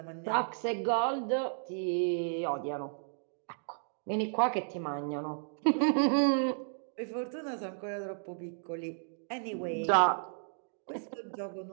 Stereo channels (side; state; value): left; silent; digital silence